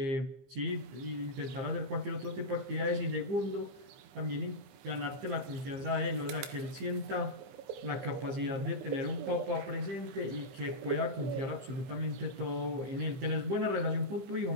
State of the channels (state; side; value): late; left; 15 ms